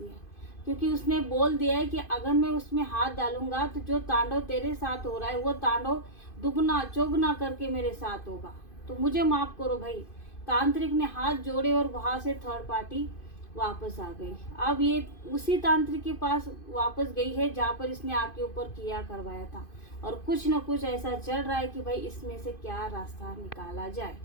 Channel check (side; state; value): right; late; 2.5 ms